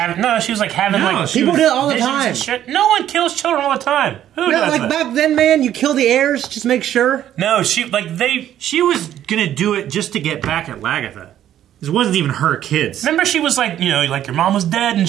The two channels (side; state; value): left; quieter; 11.4 dB